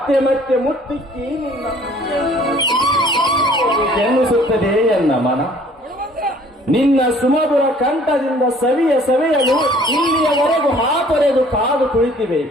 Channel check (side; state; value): both; normal; correlation 0.55